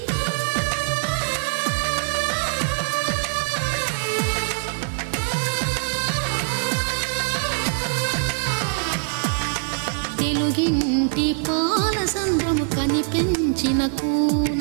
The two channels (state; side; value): silent; left; digital silence